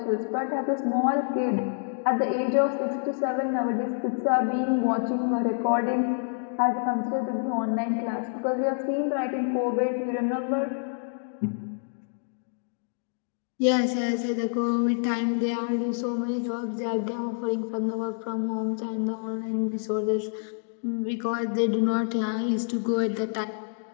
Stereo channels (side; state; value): right; silent; digital silence